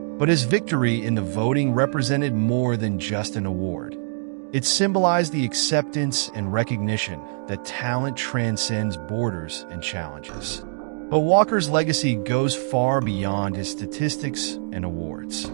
but his victory in the voting represented more than just an award. It symbolized the acceptance and recognition that talent transcends borders and challenges. But Walker's legacy goes far beyond his statistics and awards.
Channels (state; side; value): silent; left; 63 dB below the other